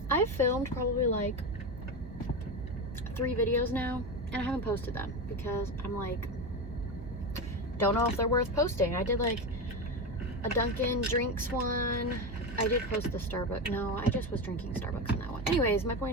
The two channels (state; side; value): normal; both; correlation 0.18